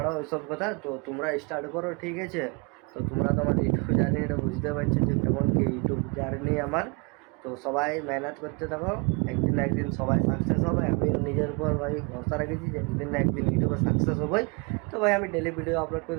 ওইসব কথা, তো তোমরা স্টার্ট করো, ঠিক আছে। তো তোমরা তো আমার ইউটিউব জার্নি এটা বুঝতে পারছো যে কেমন কি ইউটিউব জার্নি আমার। তো সবাই মেহনত করতে থাকো, একদিন না একদিন সবাই সাকসেস হবে। আমি নিজের উপর ভাই ভরসা রেখেছি যে একদিন না একদিন ইউটিউবে সাকসেস হবোই। তো ভাই আমি ডেলি ভিডিও আপলোড করে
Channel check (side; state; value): left; quieter; 31.3 dB